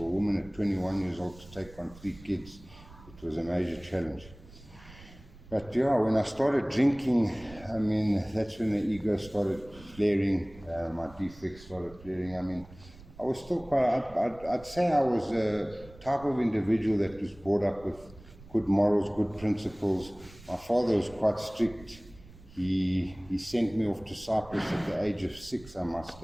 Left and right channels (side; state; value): right; noise; rumble, 21 dB below the sound